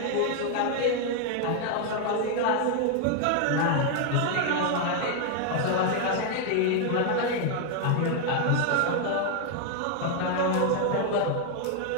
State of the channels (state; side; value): different; both; correlation 0.00